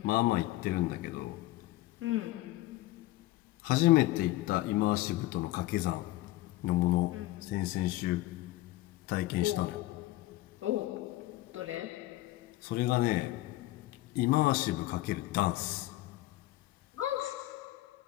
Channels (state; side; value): quieter; right; 17.2 dB